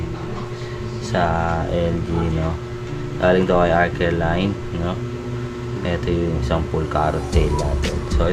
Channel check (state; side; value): identical; both; correlation 1.00